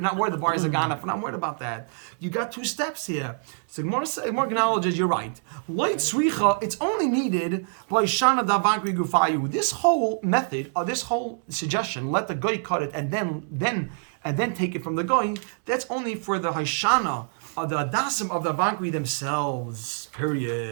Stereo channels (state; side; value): silent; left; 61 dB below the other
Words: The buyers are gone. We're not worried about that. You got two steps here. So Gemara acknowledges you're right. Light sricha. It's only needed by shana Vankri Gufayu. This whole method, or this whole suggestion, let the guy cut it and then take it from the guy. That's only for the Haishana or the Adasim of the Vankri themselves.